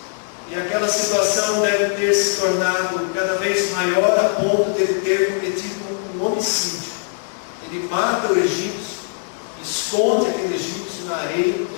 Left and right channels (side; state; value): right; silent; digital silence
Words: E aquela situação deve ter se tornado cada vez maior a ponto de ele ter cometido um homicídio. Ele mata o egípcio, esconde aquele egípcio na areia.